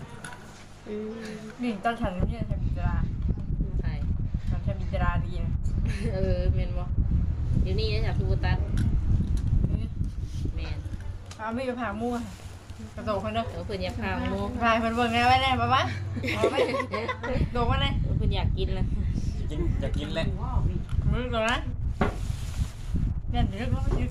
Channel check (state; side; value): identical; both; correlation 1.00